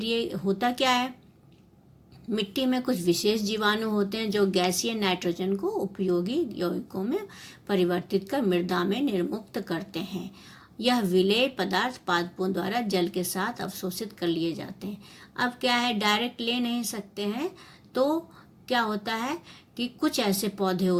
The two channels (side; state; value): both; identical; correlation 1.00